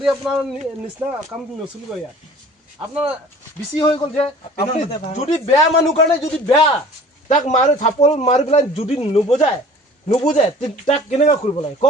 আপোনাৰ নিচিনা কাম নচলিব ইয়াত আপোনাৰ বেছি হৈ গ'ল যে আপুনি যদি বেয়া মানুহ কাৰণে যদি বেয়া তাক মাৰি থাপল মাৰি পেলাই যদি নুবুজায় তাক কেনেকৈ কৰিব লাগে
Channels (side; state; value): both; normal; correlation 0.47